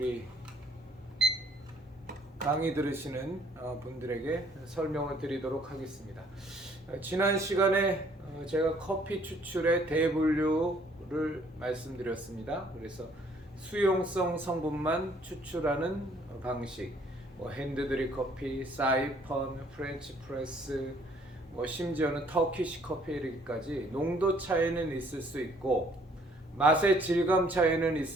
강의 들으시는 분들에게 설명을 드리도록 하겠습니다. 지난 시간에 제가 커피 추출의 대분류를 말씀드렸습니다. 그래서 수용성 성분만 추출하는 방식, 핸드드립 커피, 사이펀, 프렌치 프레스, 심지어는 터키시 커피까지 농도 차이는 있을 수 있고 맛의 질감 차이는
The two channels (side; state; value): both; normal; correlation 0.62